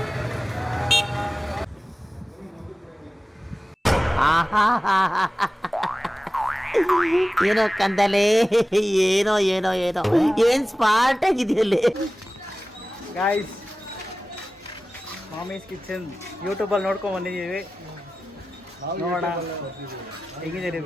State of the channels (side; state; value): both; normal; correlation 0.96